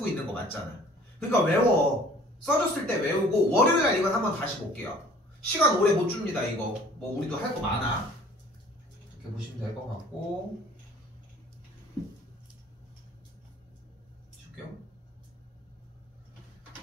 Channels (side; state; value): both; normal; correlation 0.51